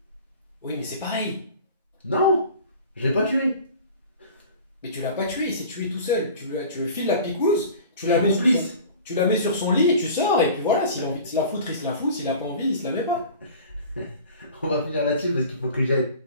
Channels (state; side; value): inverted; both; correlation -0.41